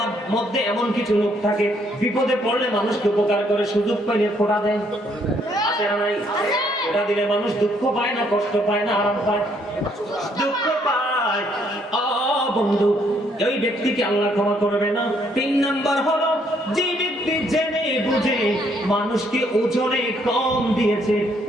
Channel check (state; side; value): normal; both; correlation 0.69